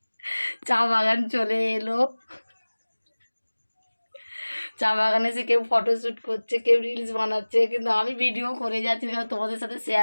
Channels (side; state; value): both; inverted; correlation -1.00